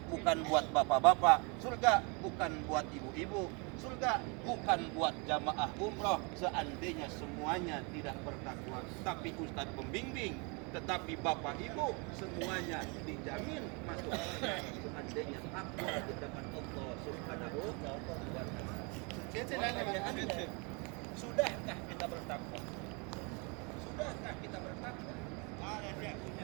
bukan buat bapak-bapak. Surga bukan buat ibu-ibu. Surga bukan buat jamaah umroh seandainya semuanya tidak bertakwa. Tapi ustadz pembimbing, tetapi bapak ibu semuanya dijamin masuk surga seandainya takwa di hadapan Allah Subhanahu wa taala. Sudahkah kita bertakwa? Sudahkah kita bertakwa? Ada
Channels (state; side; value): quieter; left; 31.9 dB